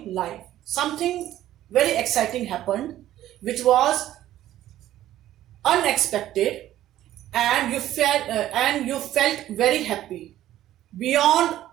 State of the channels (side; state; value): left; quieter; 13.3 dB